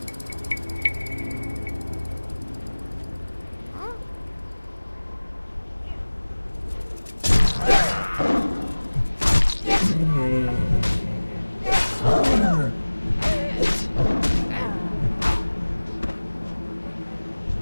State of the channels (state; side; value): inverted; both; correlation -1.00